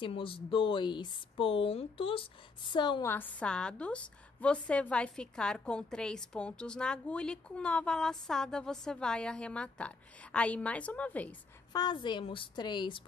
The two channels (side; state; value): right; quieter; 4.1 dB